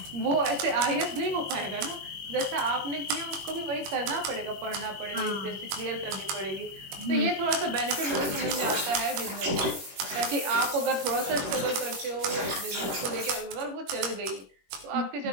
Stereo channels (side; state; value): left; late; 21 ms